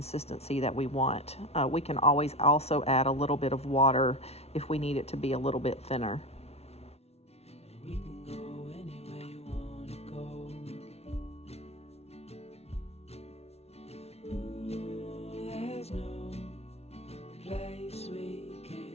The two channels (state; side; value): late; right; 0.31 ms